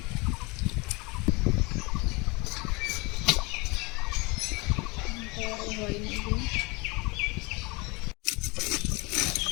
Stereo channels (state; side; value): quieter; right; 26.6 dB